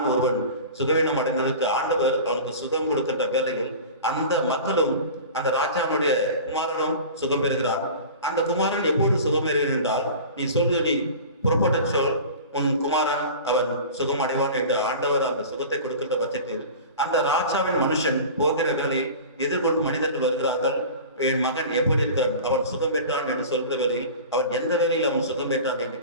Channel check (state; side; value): inverted; both; correlation -0.36